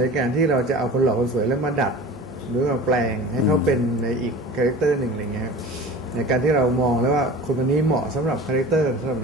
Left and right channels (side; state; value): both; normal; correlation 0.37